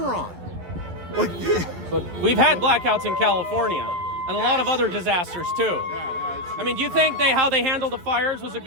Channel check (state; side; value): late; left; 11 ms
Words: on. Like, But we've had blackouts in California and a lot of other disasters too. I mean, do you think how they handled the fires was a